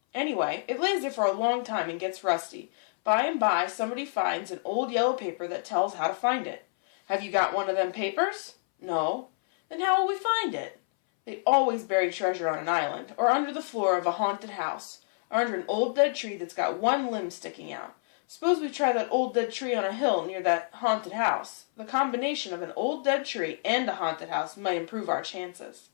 Anyway, it lays there for a long time and gets rusty. By and by, somebody finds an old yellow paper that tells how to find it." "Have you got one of them papers?" "No." "Then how will we find it?" They always bury treasure on an island, or under the floor of a haunted house, or under an old dead tree that's got one limb sticking out. Suppose we try that old dead tree on a hill near that haunted house. The combination of an old dead tree and a haunted house might improve our chances.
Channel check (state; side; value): silent; right; 59 dB below the other